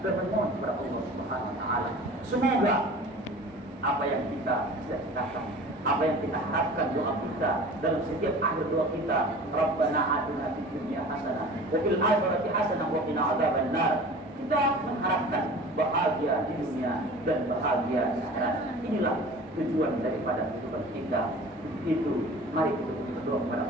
dan memohon kepada Allah Subhanahu wa taala. Semoga apa yang kita cita-citakan, apa yang kita harapkan doa kita dalam setiap akhir doa kita, Rabbana atina fid dunya hasanah wa fil akhirati hasanah wa qina adzabannar. Kita mengharapkan bahagia di dunia dan bahagia di akhirat. Inilah tujuan daripada kehidupan kita. Itu mari kita berdoa kepada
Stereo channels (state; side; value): normal; both; correlation 0.41